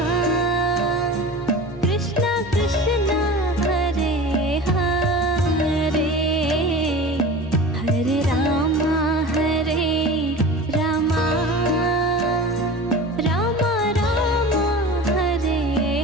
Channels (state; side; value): normal; both; correlation 0.34